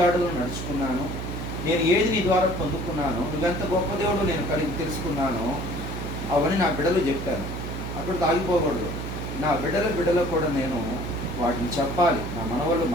నడుచుకున్నాను, నేను ఏది నీ ద్వారా పొందుకున్నాను, నువ్వెంత గొప్ప దేవుడు నేను కలిగి తెలుసుకున్నాను, అవన్నీ నా బిడ్డలు చెప్పాను. అక్కడ ఆగిపోకూడదు. నా బిడ్డలకు కూడా నేను వాటిని చెప్పాలి, నా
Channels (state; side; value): noise; right; hum, 6 dB below the sound